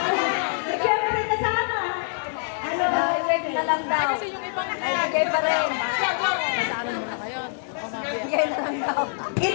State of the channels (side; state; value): right; silent; digital silence